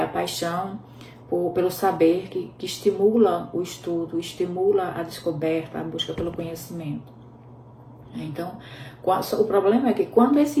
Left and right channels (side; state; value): both; identical; correlation 1.00